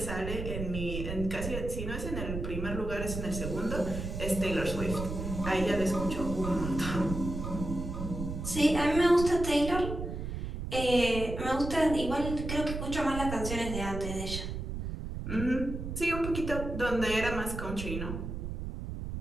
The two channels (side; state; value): right; noise; rumble, 5 dB below the sound